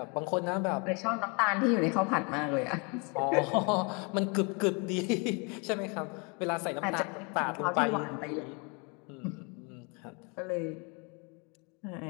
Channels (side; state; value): right; quieter; 32.7 dB